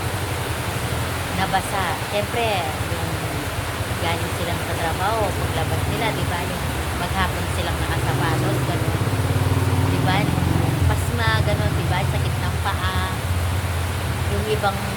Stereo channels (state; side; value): identical; both; correlation 1.00